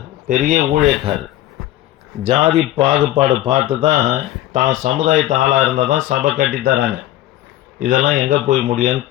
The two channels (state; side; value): quieter; right; 14.6 dB